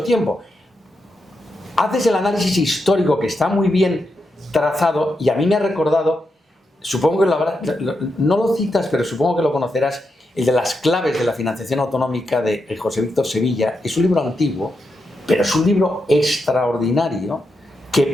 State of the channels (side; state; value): both; normal; correlation 0.85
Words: tiempo. haces el análisis histórico que está muy bien trazado y a mí me ha recordado, supongo que no lo citas, pero supongo que lo conocerás, el de las claves de la financiación autonómica de José Víctor Sevilla. Es un libro antiguo, pero es un libro extraordinario